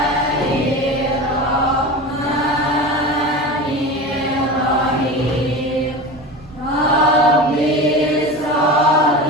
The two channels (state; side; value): normal; both; correlation 0.29